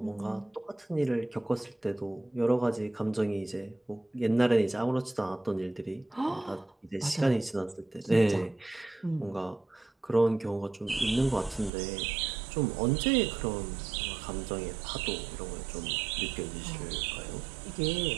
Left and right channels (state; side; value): drops out; left; at 11.7 s